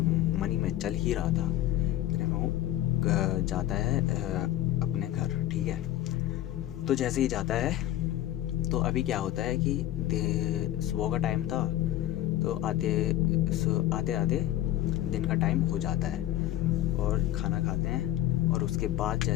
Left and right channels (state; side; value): quieter; right; 13.9 dB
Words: में चल ही रहा था। फिर वो जाता है अपने घर, ठीक है। तो जैसे ही जाता है तो अभी क्या होता है कि सुबह का टाइम था। तो आते आते दिन का टाइम हो जाता है और खाना खाते हैं। और उसके बाद